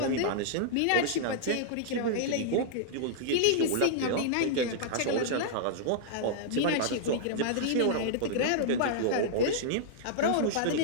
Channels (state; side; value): different; both; correlation -0.01